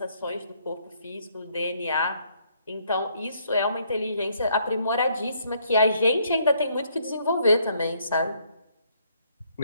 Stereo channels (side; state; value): both; inverted; correlation -0.69